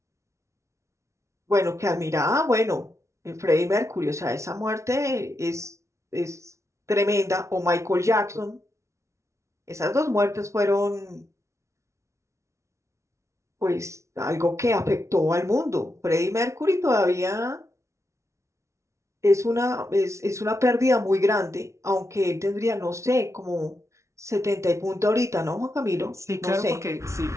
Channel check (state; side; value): late; left; 0.14 ms